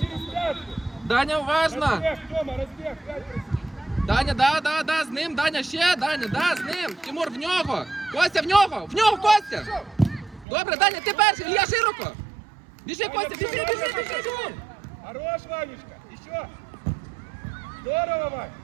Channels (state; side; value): drops out; left; at 10.5 s